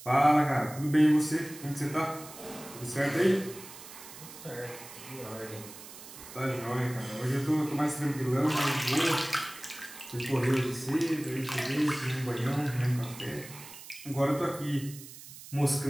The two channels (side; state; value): right; noise; hiss, 15 dB below the sound